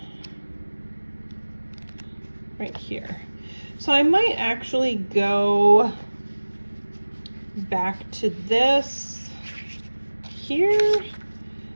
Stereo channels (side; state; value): both; inverted; correlation -1.00